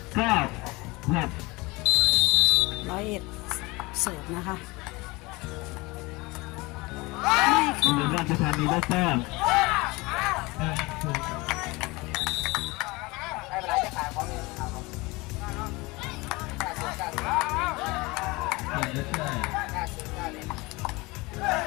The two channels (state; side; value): quieter; right; 23.5 dB